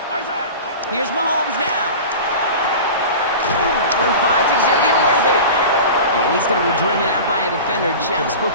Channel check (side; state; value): both; inverted; correlation -0.33